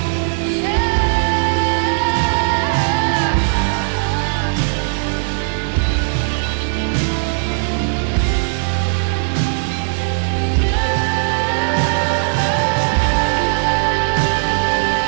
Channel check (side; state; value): left; silent; digital silence